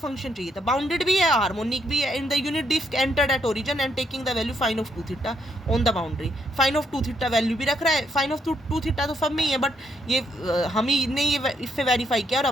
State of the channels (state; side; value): normal; both; correlation 0.74